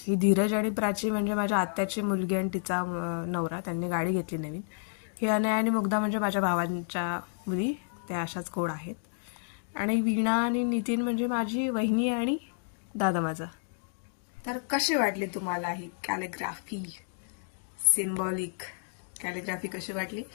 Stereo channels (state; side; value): silent; right; digital silence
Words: ही धीरज आणि प्राची म्हणजे माझ्या आत्याची मुलगी आणि तिचा नवरा, त्यांनी गाडी घेतली नवीन. ही अनया आणि मुग्धा म्हणजे माझ्या भावांच्या मुली, त्या अशाच गोड आहेत. आणि वीणा आणि नितीन म्हणजे माझी वहिनी आणि दादा माझा. तर कशी वाटली तुम्हाला ही कॅलिग्राफी, सिम्बॉलिक कॅलिग्राफी कशी वाटली